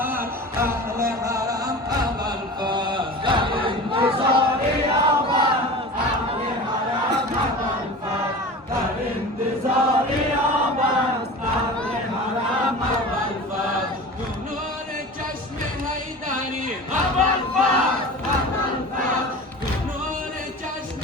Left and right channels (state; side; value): normal; both; correlation 0.35